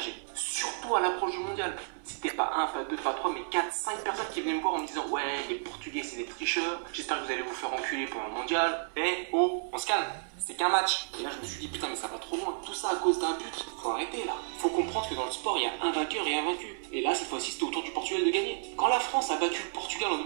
Surtout à l'approche du mondial. C'était pas 1, pas 2, pas 3, mais 4, 5 personnes qui venaient me voir en me disant ouais, les Portugais c'est des tricheurs, j'espère que vous allez vous faire enculer pendant le mondial. Eh oh, on se calme, c'est qu'un match. Et là, je me suis dit putain, mais ça va trop loin. Tout ça à cause d'un but. Faut arrêter là. Faut comprendre que dans le sport, il y a un vainqueur et un vaincu. Et là, cette fois-ci, c'était au tour du Portugal de gagner. Quand la France a battu le Portugal en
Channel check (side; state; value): left; silent; 57 dB below the other